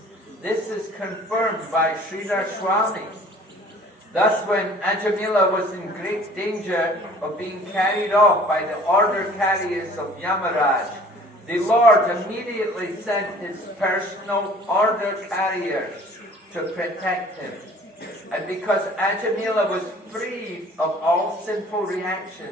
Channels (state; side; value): normal; both; correlation 0.51